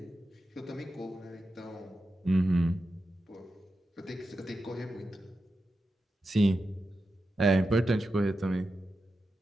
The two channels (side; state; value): both; normal; correlation 0.90